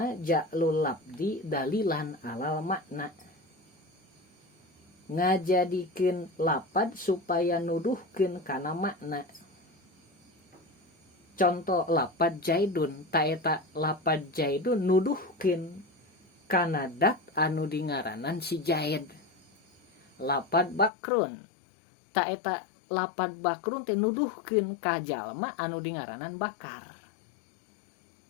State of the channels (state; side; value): drops out; right; at 20.9 s